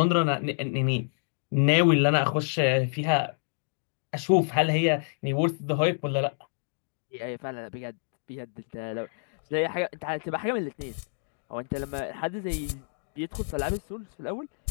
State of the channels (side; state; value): right; silent; digital silence